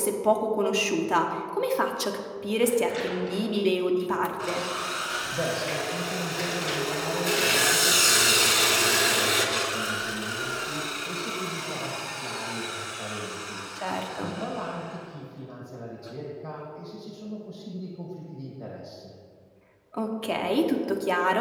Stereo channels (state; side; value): identical; both; correlation 1.00